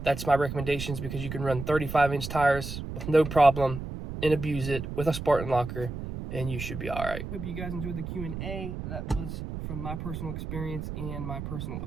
my recommendations, because you can run 35-inch tires with no problem and abuse it with a Spartan locker, and you should be all right. Hope you guys enjoyed the Q&A. That was from my personal experience and my personal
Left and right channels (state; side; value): noise; right; rumble, 7 dB below the sound